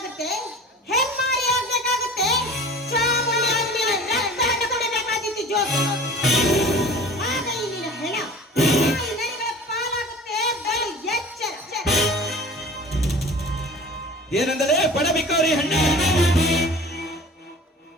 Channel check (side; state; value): both; normal; correlation 0.42